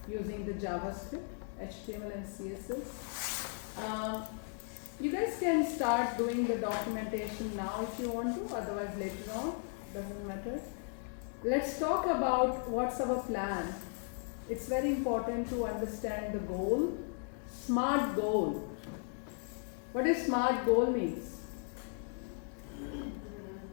using the JavaScript, HTML and CSS. You guys can start doing the documentation now if you want to, otherwise later on, doesn't matter. Let's talk about what's our plan. It's very important to understand the goal. SMART goal. What does SMART goal means?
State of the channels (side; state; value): right; silent; 54 dB below the other